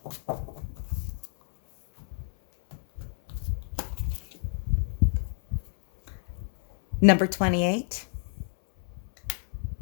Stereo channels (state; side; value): silent; right; 59 dB below the other